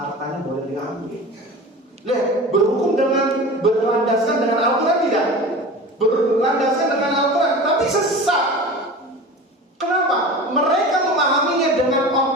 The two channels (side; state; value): both; normal; correlation 0.34